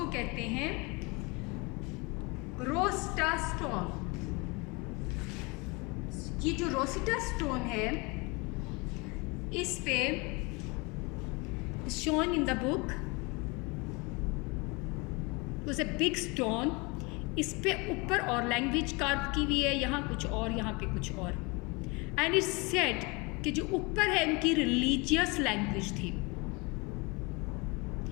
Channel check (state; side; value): quieter; right; 27.7 dB